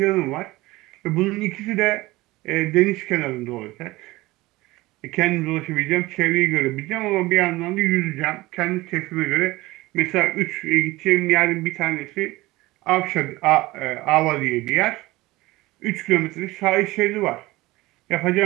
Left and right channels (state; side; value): quieter; left; 19.8 dB